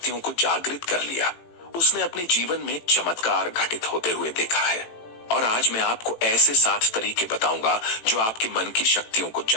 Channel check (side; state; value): right; late; 18 ms